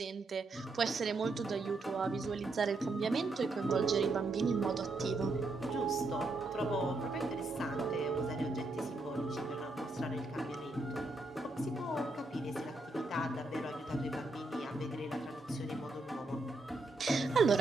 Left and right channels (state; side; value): quieter; left; 3.1 dB